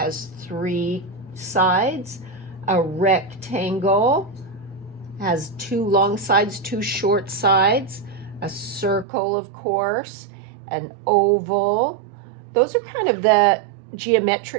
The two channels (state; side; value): drops out; left; at 9.1 s